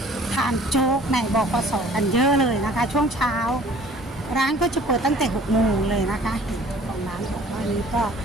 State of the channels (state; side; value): normal; both; correlation 0.51